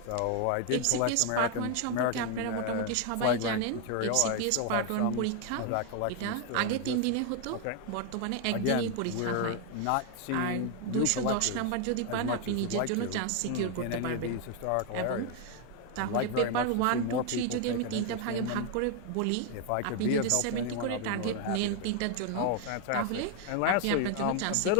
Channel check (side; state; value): both; different; correlation 0.01